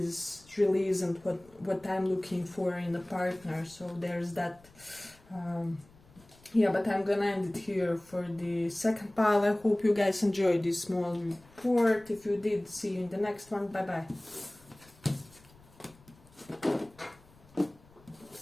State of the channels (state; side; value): noise; left; rumble, 26 dB below the sound